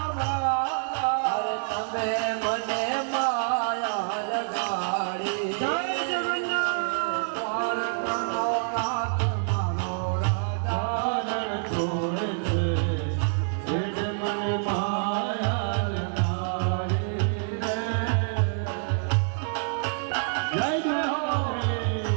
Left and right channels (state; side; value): silent; left; digital silence